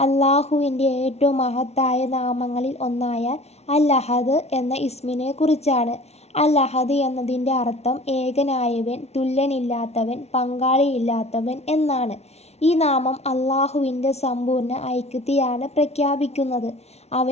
അള്ളാഹുവിൻ്റെ ഏറ്റവും മഹത്തായ നാമങ്ങളിൽ ഒന്നായ അൽ അഹദ് എന്ന ഇസ്മിനെ കുറിച്ചാണ്. അൽ അഹദ് എന്നതിൻ്റെ അർത്ഥം ഏകനായവൻ, തുല്യനില്ലാത്തവൻ, പങ്കാളിയില്ലാത്തവൻ എന്നാണ്. ഈ നാമം അള്ളാഹുവിൻ്റെ സമ്പൂർണ്ണ ഐക്യത്തെയാണ് പ്രഖ്യാപിക്കുന്നത്.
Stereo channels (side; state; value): right; late; 0.31 ms